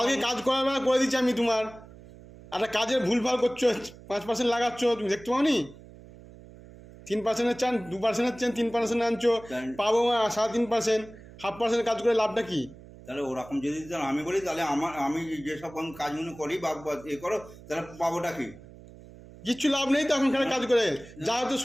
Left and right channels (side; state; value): right; noise; hum, 19 dB below the sound